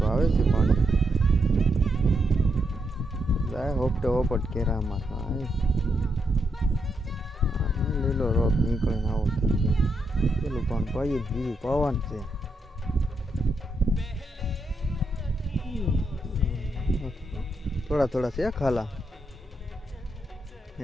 आवे छे पाणी। लाय होपटे होपट केरा में लीलो रोप निकळे आवो थई गयो। पेલું પણ પાયું બીજું પાવાનું છે। थोड़ा थोड़ा से खाला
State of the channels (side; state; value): both; normal; correlation 0.81